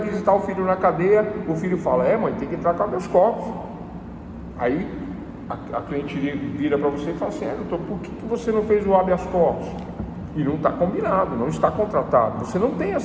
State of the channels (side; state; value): both; identical; correlation 1.00